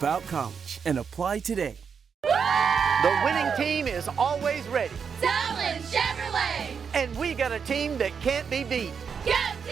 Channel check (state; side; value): quieter; left; 6.5 dB